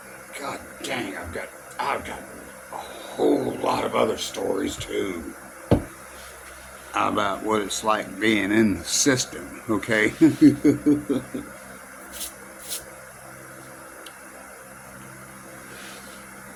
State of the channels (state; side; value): identical; both; correlation 1.00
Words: God dang, I've got a whole lot of other stories too about what it's like being in the system, okay?